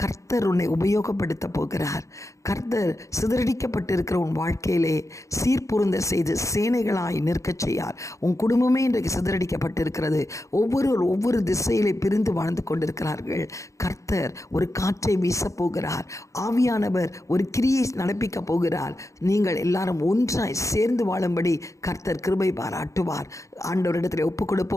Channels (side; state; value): right; late; 0.15 ms